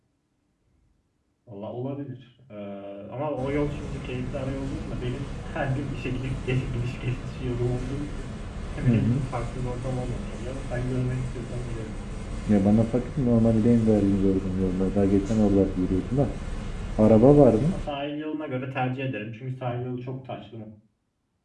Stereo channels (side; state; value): both; identical; correlation 1.00